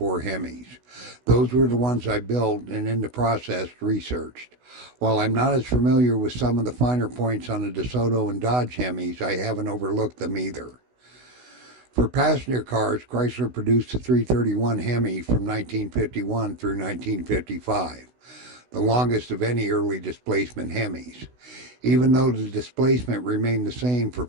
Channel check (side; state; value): left; late; 16 ms